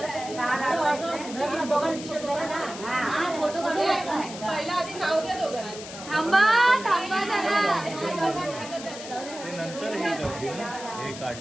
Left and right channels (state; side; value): noise; left; hiss, 12 dB below the sound